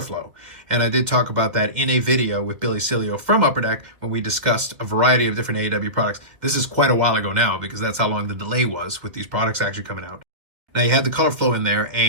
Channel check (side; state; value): left; late; 2.1 ms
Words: flow. And I did talk about that in a video with Billy Cilio from Upper Deck when we discussed a variety of different AEW products. This is quite a while ago now because that's how long the delay was with these products actually coming out. Now you had the color flow in there,